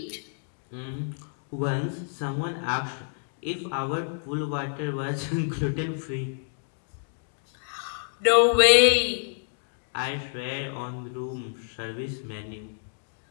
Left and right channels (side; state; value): right; silent; digital silence